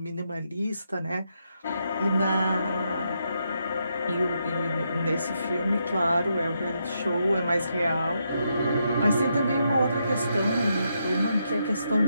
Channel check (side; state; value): both; inverted; correlation -0.80